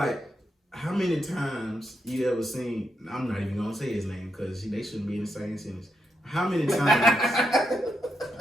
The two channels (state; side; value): normal; both; correlation 0.82